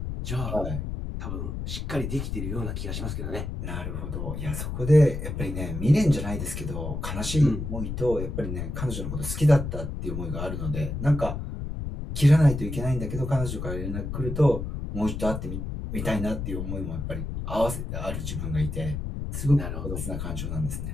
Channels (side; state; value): left; noise; rumble, 4 dB below the sound